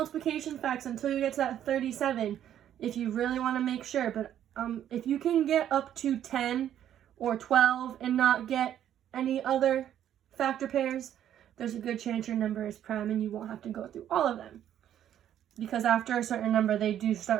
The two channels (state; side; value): quieter; left; 10.7 dB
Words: facts until you get to that 37, if you really want to make sure. But if you can get up to 10 or 12 and not get any other factor pairs, there's a good chance your number is prime and you won't have to go through all of them. Because after a certain number, they do